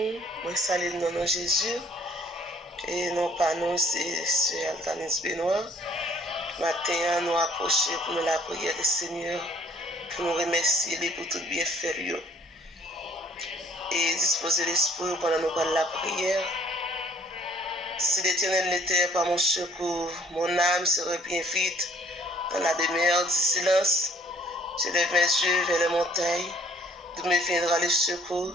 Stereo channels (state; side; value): normal; both; correlation 0.59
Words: moi salue dans nom Jésus. Et non pas nous, c'est Altanis Benoît. Matin, nous approcher pour nous la prière du Seigneur, pour nous remercier pour tout bien faire. Et disposer l'esprit pendant nous parler la prière. Si l'Éternel n'était pas mon secours, mon âme serait bien vite dans la demeure du silence. Je lève mes yeux vers les montagnes, d'où me viendra le secours.